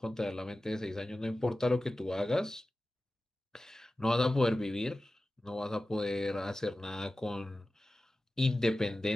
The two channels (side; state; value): both; normal; correlation 0.95